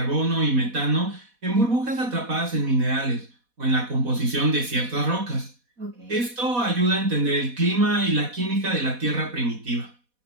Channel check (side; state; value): left; late; 4.1 ms